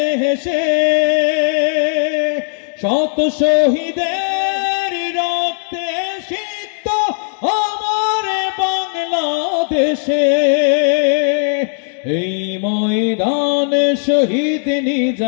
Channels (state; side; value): silent; right; 62 dB below the other